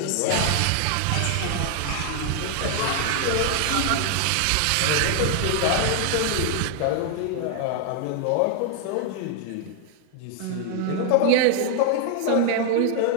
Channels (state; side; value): different; both; correlation 0.00